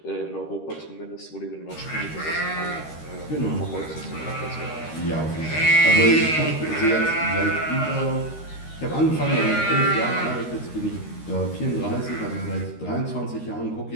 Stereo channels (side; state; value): right; late; 13 ms